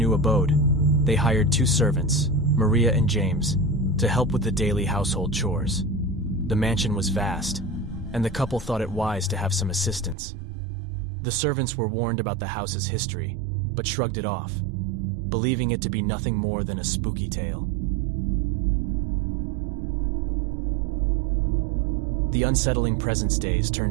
abode, they hired 2 servants, Maria and James, to help with the daily household chores. The mansion was vast, and the couple thought it wise to have some assistance. The servants were warned about the house's history, but shrugged it off, believing it to be nothing more than a spooky tale. The unsettling presence days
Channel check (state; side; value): drops out; left; at 10.2 s